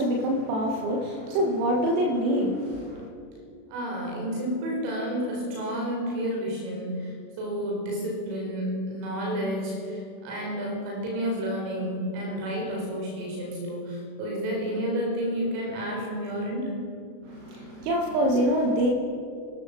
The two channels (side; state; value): left; late; 36 ms